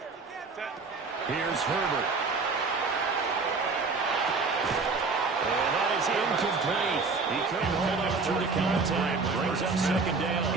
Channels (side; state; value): left; quieter; 4.3 dB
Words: Here's Herbert. And that is incomplete. He couldn't hold up through the contact. Brings up second down.